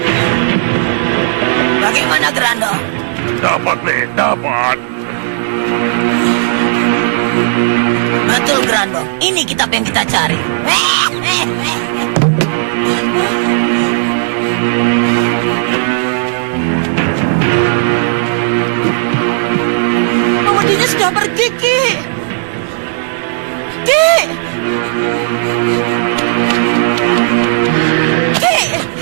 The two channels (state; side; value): silent; left; 71 dB below the other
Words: Bagaimana, Grandong? Dapat, Le, dapat. Betul, Grandong. Ini kitab yang kita cari. Memedinya sudah pergi, Ki. Ki! Ki!